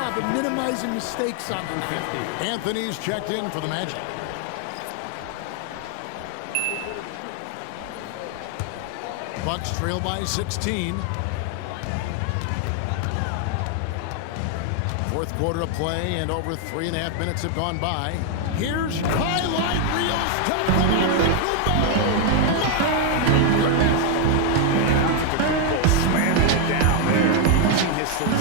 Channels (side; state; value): both; different; correlation 0.00